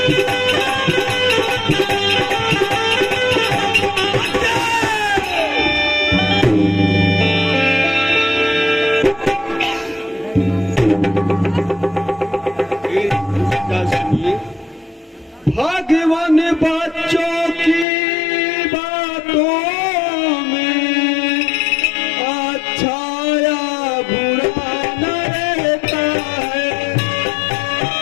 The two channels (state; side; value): drops out; right; at 17.9 s